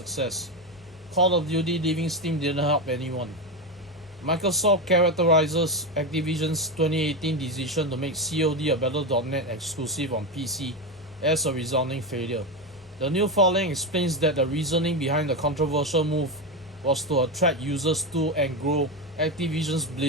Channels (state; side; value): normal; both; correlation 0.14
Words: Call of Duty leaving Steam didn't help anyone. Microsoft characterizes Activision's 2018 decision to make COD a Battle.net exclusive on PC as a resounding failure. The new filing explains that the reasoning behind the controversial move was to attract users to and grow Activision's